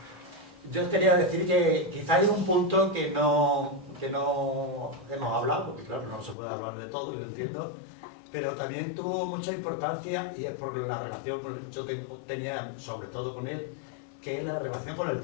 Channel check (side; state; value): right; drops out; at 6.4 s